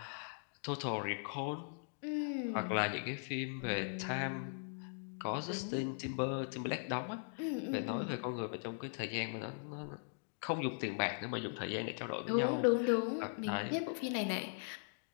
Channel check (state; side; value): silent; right; digital silence